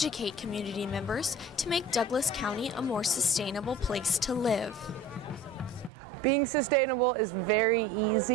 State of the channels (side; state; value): left; drops out; at 5.9 s